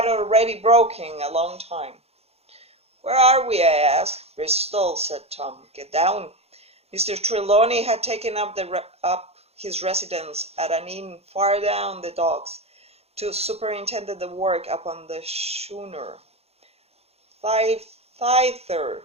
already broken a long time. "Where are we?" I asked. "Bristol," said Tom. "Get down." Mr. Trelawney had taken up his residence at an inn far down the docks to superintend the work upon the schooner. Thither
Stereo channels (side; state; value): left; late; 0.30 ms